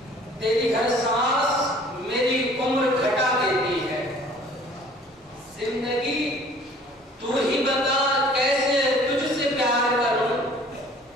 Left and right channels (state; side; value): normal; both; correlation 0.52